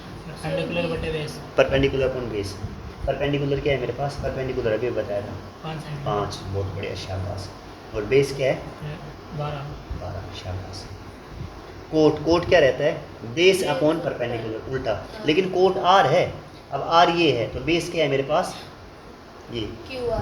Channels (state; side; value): identical; both; correlation 1.00